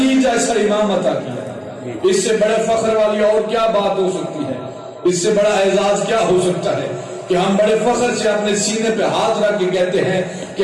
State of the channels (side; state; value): both; identical; correlation 1.00